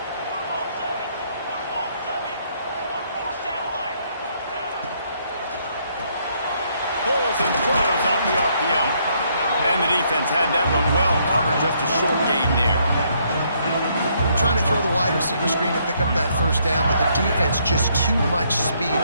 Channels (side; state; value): both; inverted; correlation -0.70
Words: Pulls and throws off the RPO. And the defense had that one well covered, just a short gain there. Trying to throw the wide receiver screen to pick up that first down, but the defense just too much speed